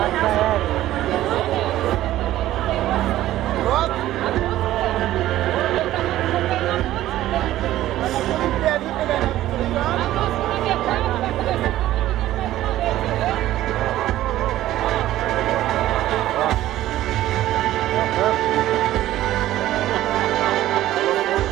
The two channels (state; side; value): quieter; left; 14.3 dB